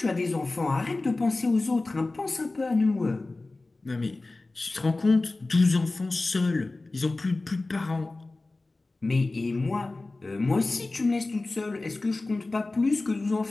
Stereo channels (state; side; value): quieter; right; 3.2 dB